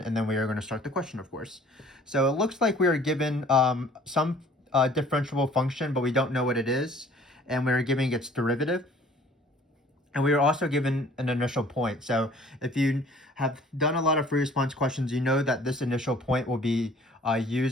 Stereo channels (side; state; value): both; normal; correlation 0.53